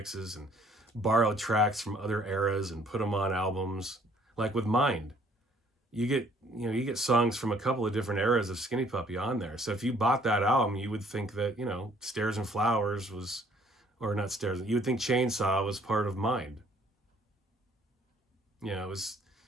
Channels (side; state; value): both; normal; correlation 0.60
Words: and borrow tracks from other eras and put them on albums. Like with Mind, you get songs from a couple of different eras of Skinny Puppy on there. So if you bought that album, you would think that, Stairs and Flowers was, or not Stairs, you would think Chainsaw was part of Mind. It was